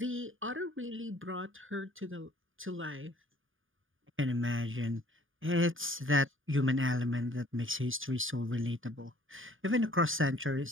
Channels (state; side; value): late; left; 0.58 ms